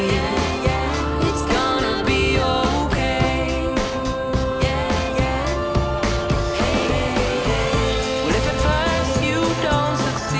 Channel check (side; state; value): both; identical; correlation 1.00